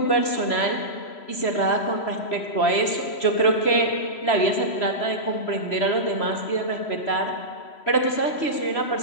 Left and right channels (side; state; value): right; late; 3.0 ms